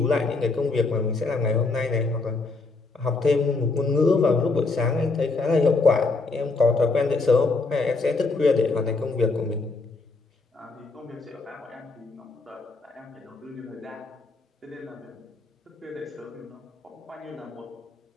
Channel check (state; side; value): quieter; right; 3.7 dB